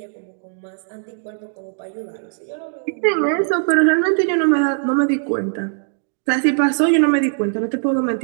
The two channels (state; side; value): silent; left; 59 dB below the other